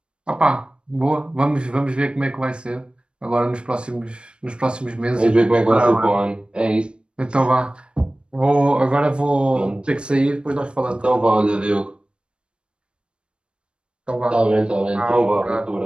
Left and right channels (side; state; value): left; late; 0.056 ms